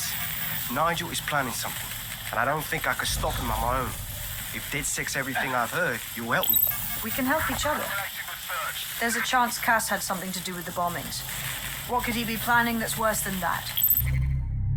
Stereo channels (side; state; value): both; identical; correlation 1.00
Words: Nigel is planning something, and I don't think I could stop him on my own. If DedSec's everything I've heard, you'll help me. We can help each other. There's a chance Cass had something to do with the bombings. What could he be planning that's worse than that?